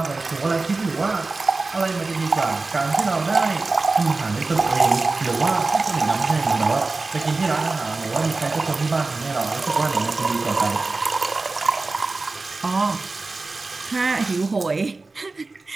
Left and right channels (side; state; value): left; quieter; 3.6 dB